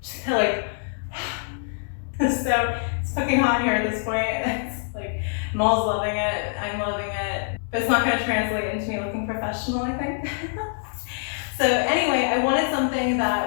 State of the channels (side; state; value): right; silent; digital silence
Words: it's fucking hot here at this point. It's like, Maul's loving it, I'm loving it, but it's not going to translate into me looking professional, I think. So anyway, I wanted something